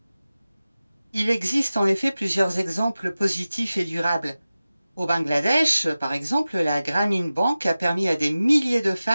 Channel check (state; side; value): inverted; both; correlation -0.96